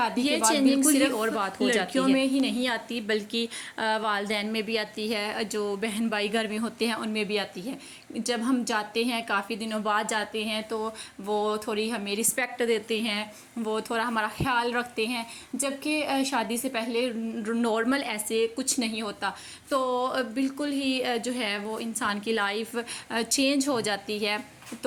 کے بعد بالکل ہی اور بات ہو جاتی ہے۔ لڑکیوں میں ہی نہیں آتی بلکہ والدین میں بھی آتی ہے، جو بہن بھائی گھر میں ہوتے ہیں ان میں بھی آتی ہے، جب ہم جاتے ہیں کافی دنوں بعد جاتے ہیں تو وہ تھوڑی ہمیں رسپیکٹ دیتے ہیں، وہ تھوڑا ہمارا خیال رکھتے ہیں، جبکہ شادی سے پہلے نارمل ایسے کچھ نہیں ہوتا. تو بالکل ہی جو ہے وہ انسان کی لائف چینج ہو جاتی ہے.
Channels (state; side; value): identical; both; correlation 1.00